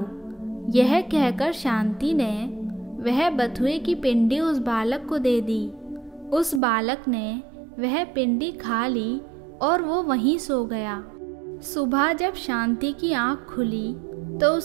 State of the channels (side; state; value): left; drops out; at 6.6 s